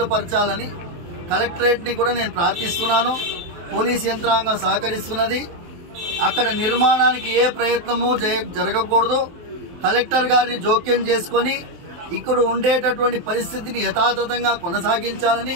పరచాలని కలెక్టరేట్ ని కూడా నేను ప్రార్థిస్తున్నాను. పోలీస్ యంత్రాంగం సహకరిస్తున్నది. అక్కడ నిర్మాణానికి ఏ ప్రయత్నము జరగకూడదు. కలెక్టర్ గారిని జోక్యం చేసుకొని ఇక్కడ ఉండేటటువంటి పరిస్థితిని యథాతథంగా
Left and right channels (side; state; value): left; late; 23 ms